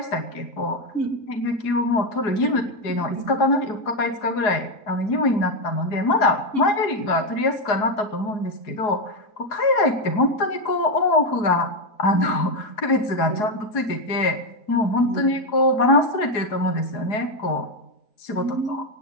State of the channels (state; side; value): late; right; 4.7 ms